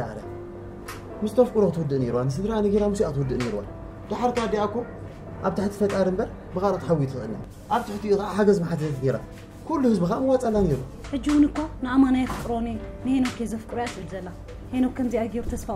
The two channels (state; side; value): identical; both; correlation 1.00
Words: على مستفكروا تودني روان سدراني غير مسي تودني روان لحركة دي أكو أبتحت فات عرب بغارة حوي تغنى أبتحت حجز ما حد يثيره كل حزب خام واتسأل نيرو حجونكو نعم أنا يفكروني نهينو كيز فكرات الزلا هينو كم زي أجيب تسفى